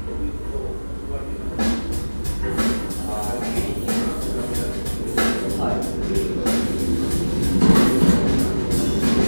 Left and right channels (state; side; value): inverted; both; correlation -1.00